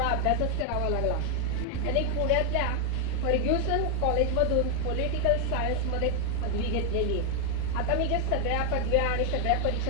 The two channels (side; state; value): both; different; correlation 0.00